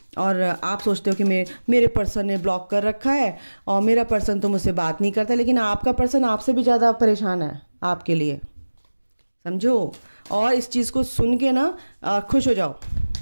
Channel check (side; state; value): both; inverted; correlation -1.00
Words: और आप सोचते हो कि मेरे पर्सन ने ब्लॉक कर रखा है और मेरा पर्सन तो मुझसे बात नहीं करता, लेकिन आपका पर्सन आपसे भी ज़्यादा परेशान है आपके लिए, समझो। और इस चीज़ को सुन के ना खुश हो जाओ